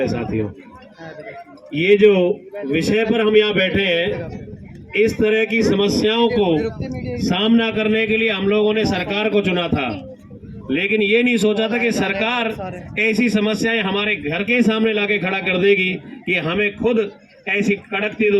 साथियों, ये जो विषय पर हम यहाँ बैठे हैं, इस तरह की समस्याओं को सामना करने के लिए हम लोगों ने सरकार को चुना था, लेकिन ये नहीं सोचा था कि सरकार ऐसी समस्याएं हमारे घर के सामने लाके खड़ा कर देगी कि हमें खुद ऐसी कड़कती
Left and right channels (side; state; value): both; identical; correlation 1.00